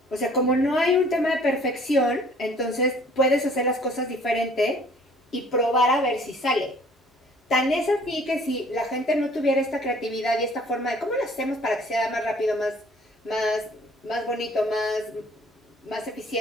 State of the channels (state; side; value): normal; both; correlation 0.55